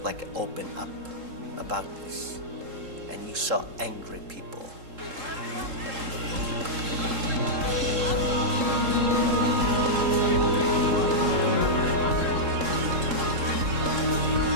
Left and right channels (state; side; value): late; left; 3.7 ms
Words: like open up about this, and you saw angry people.